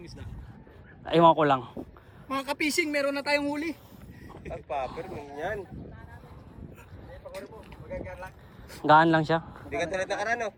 isda? Aywan ko lang. Mga kapising, meron na tayong huli. Ang paper mo yan. Gaan lang siya. Hindi ka tulad nakaraan no,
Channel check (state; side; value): identical; both; correlation 1.00